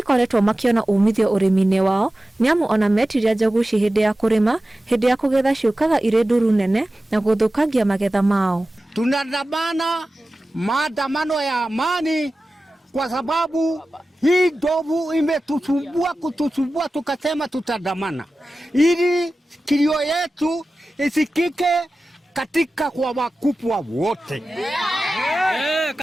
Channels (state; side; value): normal; both; correlation 0.95